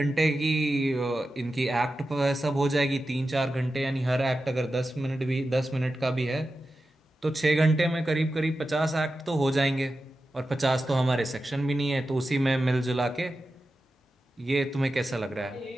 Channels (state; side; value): normal; both; correlation 0.92